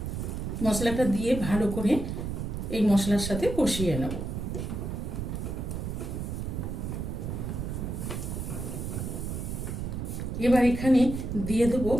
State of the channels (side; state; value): right; noise; rumble, 4 dB below the sound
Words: মশলাটা দিয়ে ভালো করে এই মশলার সাথে কষিয়ে নেব। এবার এখানে দিয়ে দেবো